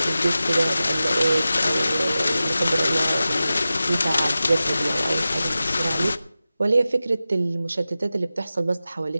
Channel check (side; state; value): both; inverted; correlation -0.94